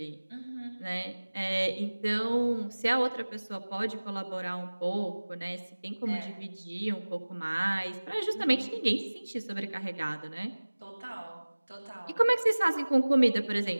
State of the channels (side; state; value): both; inverted; correlation -1.00